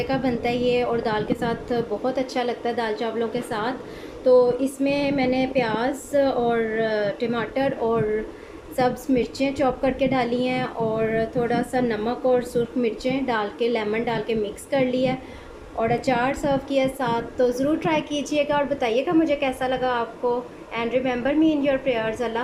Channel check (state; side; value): identical; both; correlation 1.00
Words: का बनता है ये, और दाल के साथ बहुत अच्छा लगता है दाल चावलों के साथ। तो इसमें मैंने प्याज और टमाटर और सब्ज़ मिर्चें चॉप करके डाली हैं, और थोड़ा सा नमक और सुर्ख मिर्चें डाल के, लेमन डाल के मिक्स कर लिया, और अचार सर्व किया साथ। तो ज़रूर ट्राई कीजिएगा और बताइएगा मुझे कैसा लगा आपको। And remember me in your prayers.